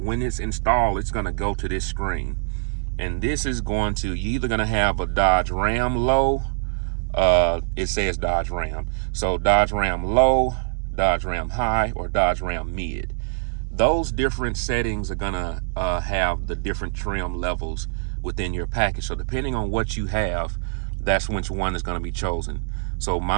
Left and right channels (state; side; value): silent; left; digital silence